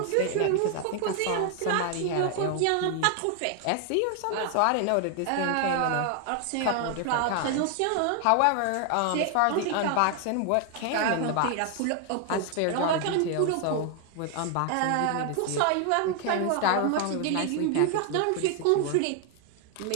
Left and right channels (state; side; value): different; both; correlation 0.00